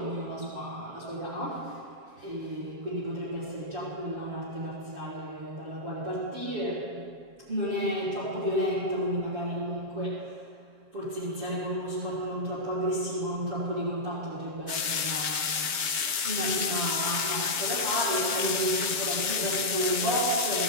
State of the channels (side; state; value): left; late; 7.4 ms